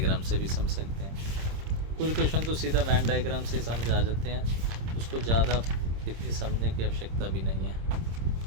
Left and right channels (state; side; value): late; left; 26 ms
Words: से भी समझ सकते हैं, कुछ क्वेश्चन तो सीधा वैन डायग्राम से समझ आ जाते हैं, उसको ज़्यादा इतनी समझने की आवश्यकता भी नहीं है।